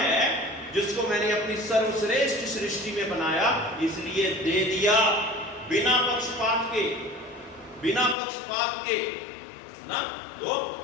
जिसको मैंने अपनी सर्वश्रेष्ठ सृष्टि में बनाया, इसलिए दे दिया बिना पक्षपात के, है ना। तो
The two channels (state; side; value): drops out; right; at 8.2 s